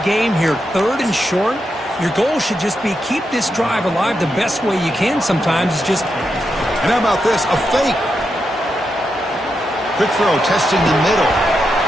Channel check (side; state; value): both; normal; correlation 0.85